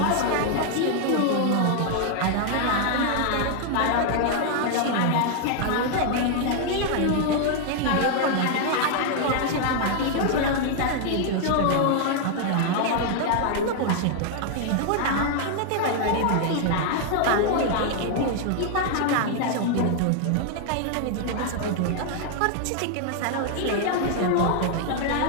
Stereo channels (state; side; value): different; both; correlation 0.00